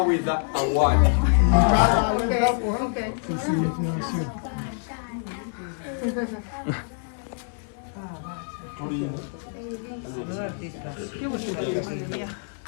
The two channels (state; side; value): silent; right; 59 dB below the other